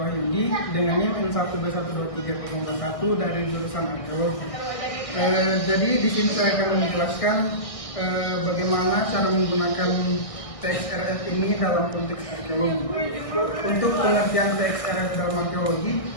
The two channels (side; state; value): right; late; 1.6 ms